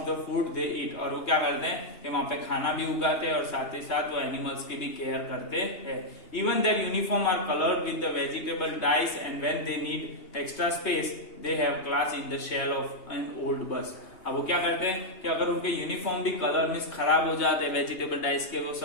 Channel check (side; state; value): right; late; 2.8 ms